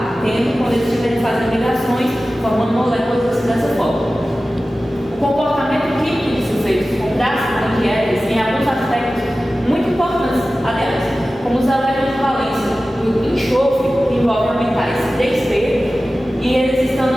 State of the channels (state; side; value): normal; both; correlation 0.95